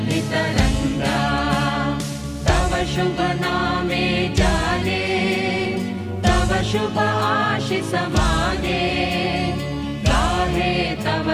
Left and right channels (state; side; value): identical; both; correlation 1.00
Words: सुरभितरङ्गा तव शुभ नामे जाने तव शुभ आशिष माने गाहे तव